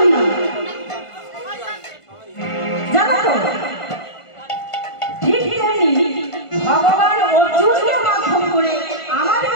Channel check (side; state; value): right; late; 1.5 ms